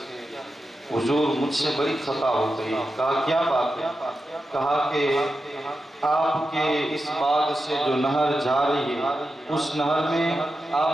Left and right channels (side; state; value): both; normal; correlation 0.90